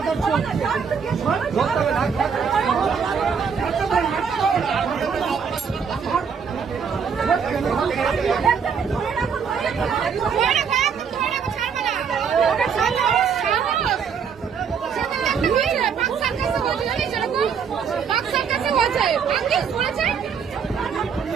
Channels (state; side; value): quieter; left; 6.6 dB